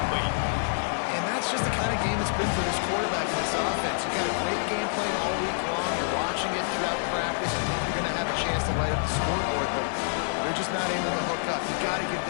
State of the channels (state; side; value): silent; right; digital silence